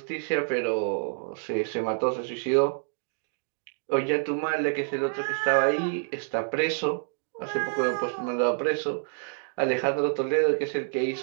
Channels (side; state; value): left; silent; 60 dB below the other